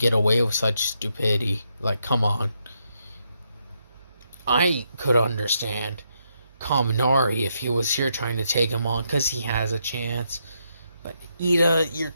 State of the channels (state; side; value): inverted; both; correlation -0.79